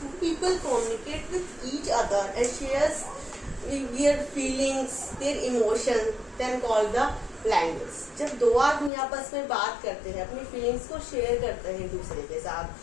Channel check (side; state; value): right; drops out; at 8.9 s